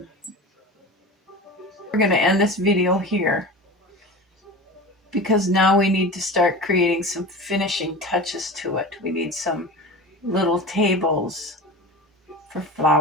We're going to end this video here because now we need to start creating some finishing touches to it. We need some little tables for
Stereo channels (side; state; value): both; normal; correlation 0.32